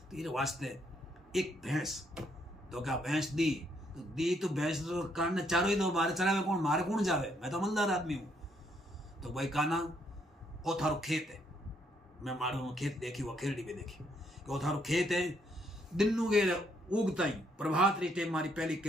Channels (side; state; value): both; normal; correlation 0.72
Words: तो ये वास्ते एक भैंस तो क्या भैंस दी तो भैंस तो कान चारों ही दो मारे चरावे कौन मारे कौन जावे मैं तो अमलदार आदमी हूं तो भाई काना ओ थारो खेत है मैं मारो खेत देखी वो खेरड़ी भी देखी कि वो थारो खेत है दिन गे उगता ही प्रभात री टेम मारी पहली